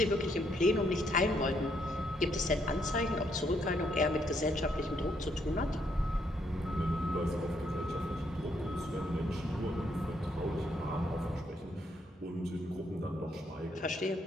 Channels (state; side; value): normal; both; correlation 0.73